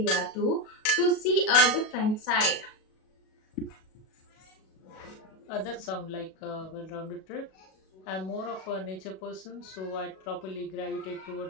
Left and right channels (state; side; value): late; right; 37 ms